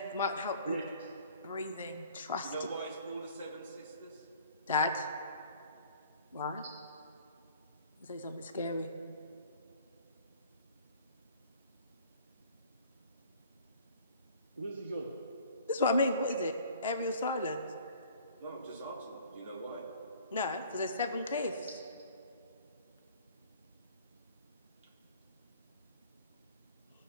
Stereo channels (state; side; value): inverted; both; correlation -0.51